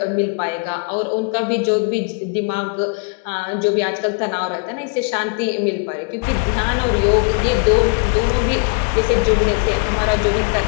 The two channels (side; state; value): right; quieter; 36.0 dB